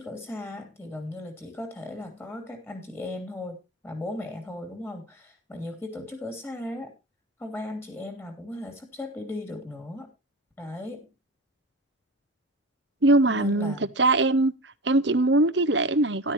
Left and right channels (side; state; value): both; normal; correlation 0.29